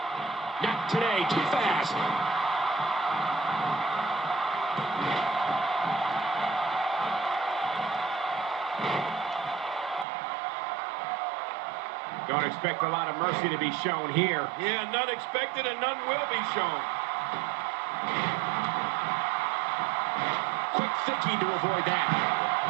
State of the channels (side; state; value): left; drops out; at 10.1 s